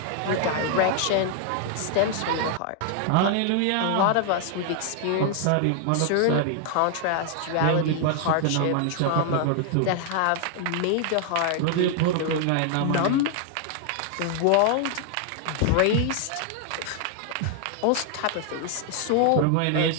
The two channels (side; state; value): both; different; correlation 0.00